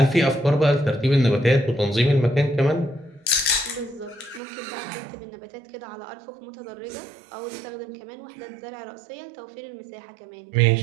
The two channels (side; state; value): left; drops out; at 4.4 s